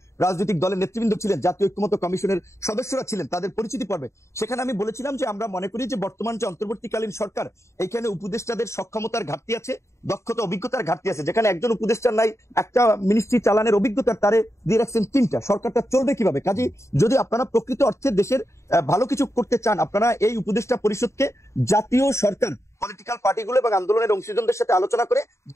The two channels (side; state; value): right; late; 0.14 ms